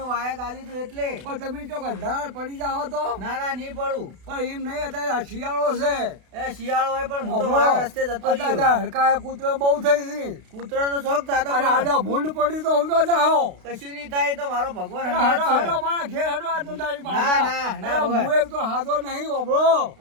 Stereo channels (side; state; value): left; late; 32 ms